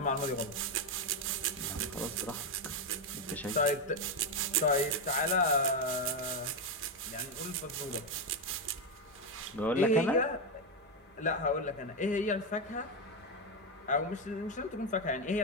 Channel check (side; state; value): both; normal; correlation 0.07